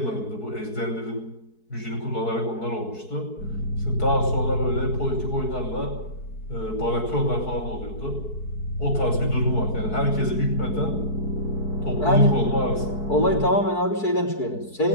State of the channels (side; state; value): right; late; 4.7 ms